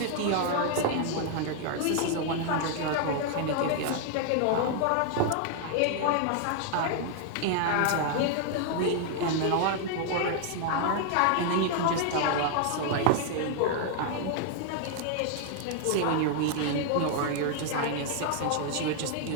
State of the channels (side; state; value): both; different; correlation 0.00